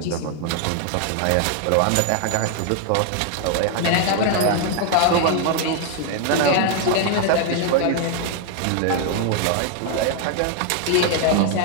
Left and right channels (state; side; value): different; both; correlation 0.00